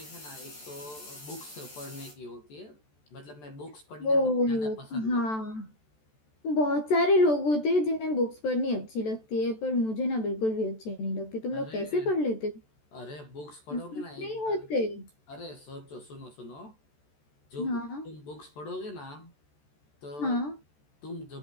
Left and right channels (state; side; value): late; right; 14 ms